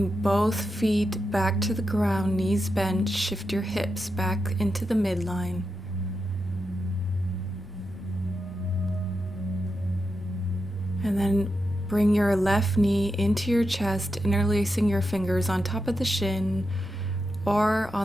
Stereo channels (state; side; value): normal; both; correlation 0.87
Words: both feet back to the ground, knees bent. Shift your hips back into the midline. And then bring your left knee into your chest, interlacing your fingers on top of the shin or